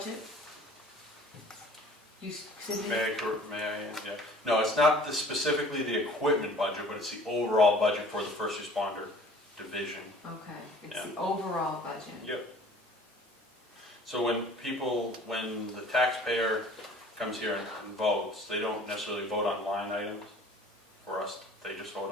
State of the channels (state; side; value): normal; both; correlation 0.49